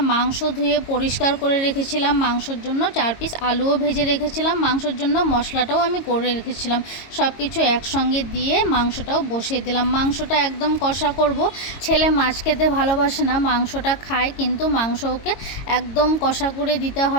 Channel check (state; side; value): late; right; 22 ms